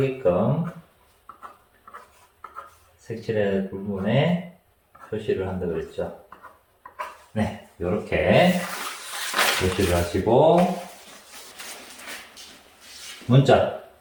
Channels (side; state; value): both; identical; correlation 1.00